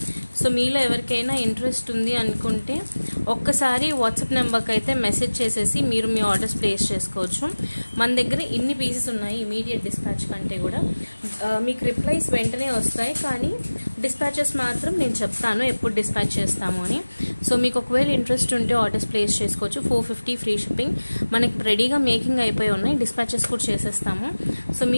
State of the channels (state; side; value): inverted; both; correlation -1.00